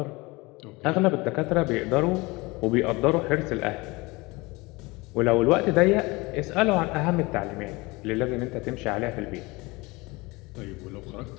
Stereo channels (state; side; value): quieter; right; 23.7 dB